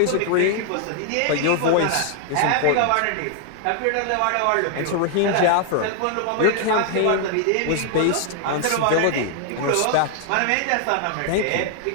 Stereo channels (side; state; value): both; different; correlation 0.00